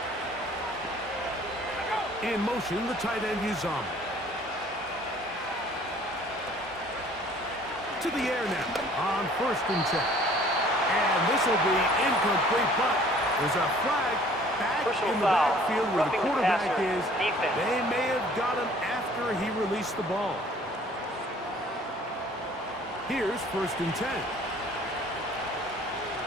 10. In motion, the tight end Uzama. To the air now on 1st and 10. And this will be incomplete, but there's a flag back in the backfield where the quarterback is. They may have got him after he released the ball. Here's 1st and 10.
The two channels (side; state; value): both; normal; correlation 0.54